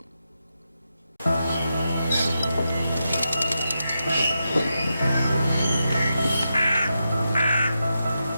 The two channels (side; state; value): both; inverted; correlation -0.87